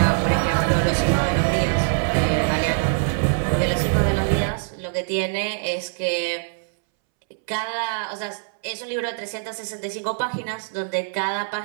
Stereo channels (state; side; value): silent; left; 63 dB below the other